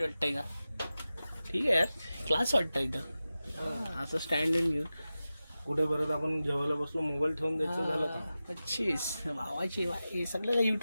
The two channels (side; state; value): both; inverted; correlation -0.94